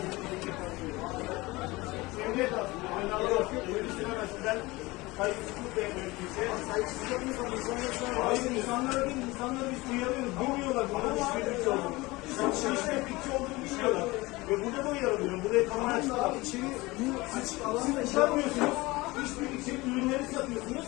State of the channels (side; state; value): right; quieter; 21.7 dB